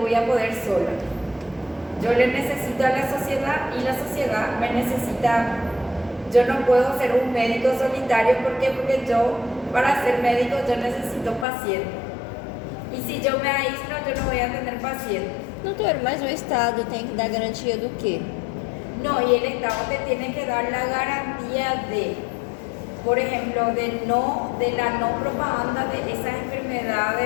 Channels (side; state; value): right; drops out; at 11.5 s